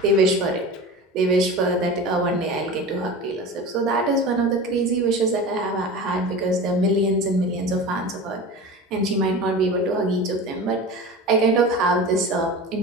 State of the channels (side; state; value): both; normal; correlation 0.32